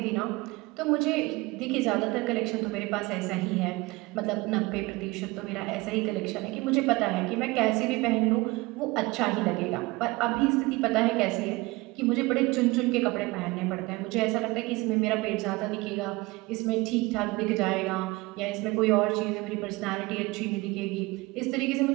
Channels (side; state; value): left; quieter; 22.5 dB